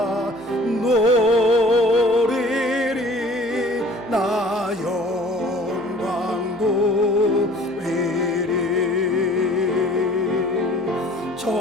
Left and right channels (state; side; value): noise; right; hum, 27 dB below the sound